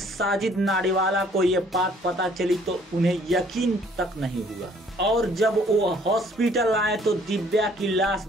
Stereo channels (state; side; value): normal; both; correlation 0.60